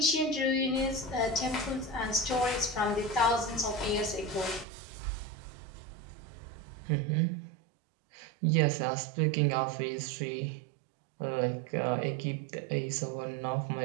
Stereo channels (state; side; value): drops out; left; at 4.7 s